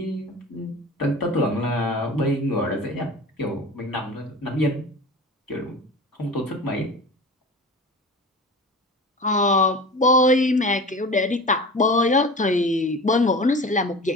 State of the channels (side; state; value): both; normal; correlation 0.35